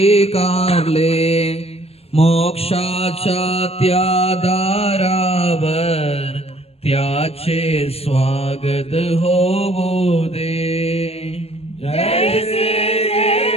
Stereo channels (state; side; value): late; right; 0.29 ms